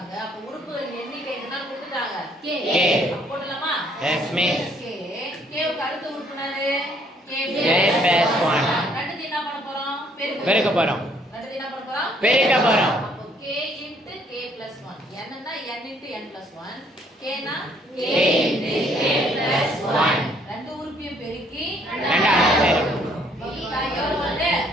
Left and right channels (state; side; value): normal; both; correlation 0.65